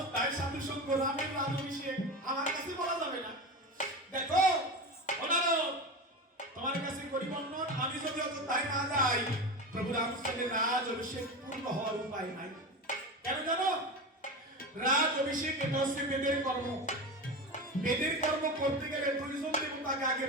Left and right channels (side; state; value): both; normal; correlation 0.24